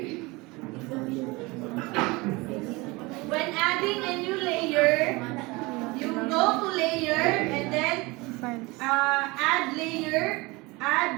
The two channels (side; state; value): left; quieter; 23.9 dB